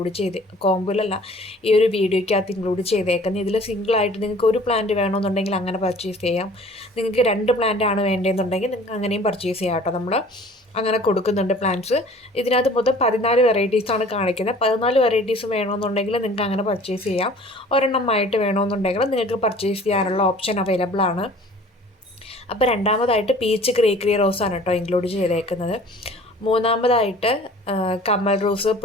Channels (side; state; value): both; normal; correlation 0.49